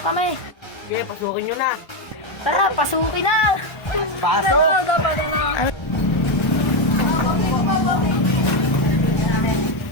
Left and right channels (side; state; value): right; late; 1.3 ms